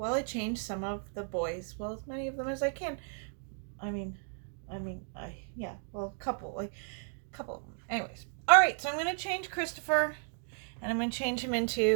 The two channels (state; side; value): silent; left; 55 dB below the other